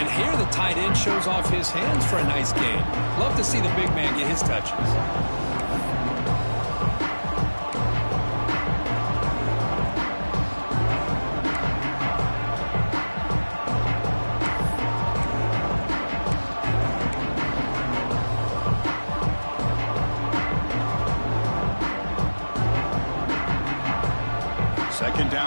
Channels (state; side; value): inverted; both; correlation -1.00